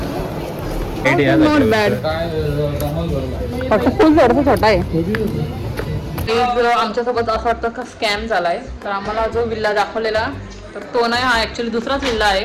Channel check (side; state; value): both; identical; correlation 1.00